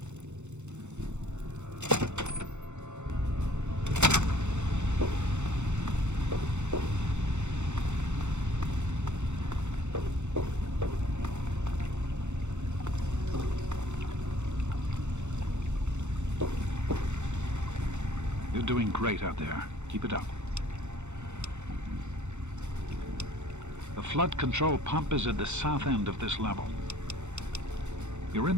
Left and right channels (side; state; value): left; late; 0.83 ms